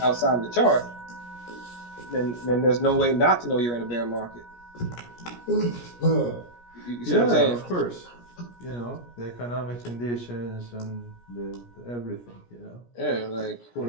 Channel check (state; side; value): late; right; 17 ms